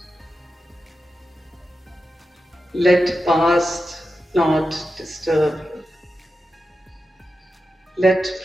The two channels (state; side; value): normal; both; correlation 0.90